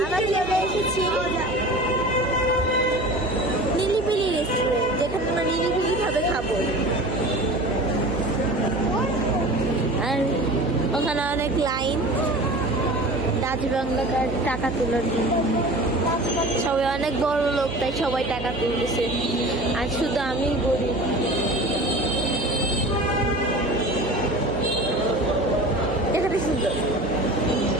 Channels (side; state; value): right; noise; hum, 11 dB below the sound